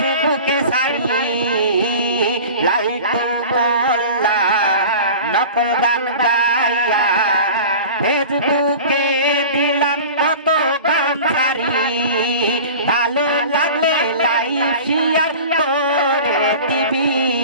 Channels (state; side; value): inverted; both; correlation -0.37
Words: সারি লাইটু মোল্লা নকল গান গাইয়া ফেসবুকে দিলাম কত গান সারি ভালো লাগলে লাইভ শেয়ার করে দিবি